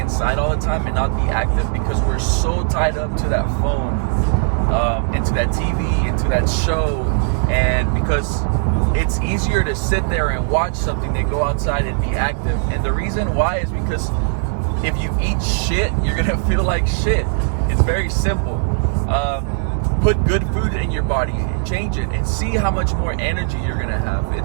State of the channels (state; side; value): silent; left; digital silence